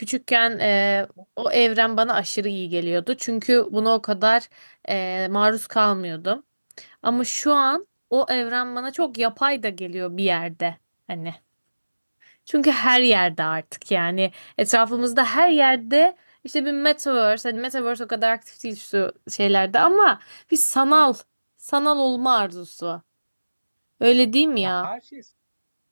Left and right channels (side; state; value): both; inverted; correlation -1.00